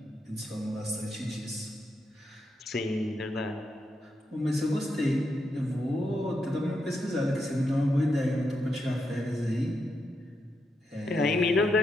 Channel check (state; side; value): normal; both; correlation 0.83